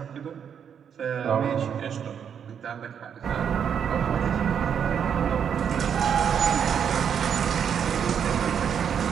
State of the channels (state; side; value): quieter; left; 7.9 dB